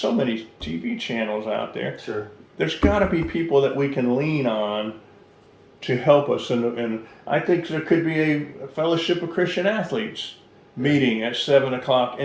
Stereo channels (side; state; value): both; identical; correlation 1.00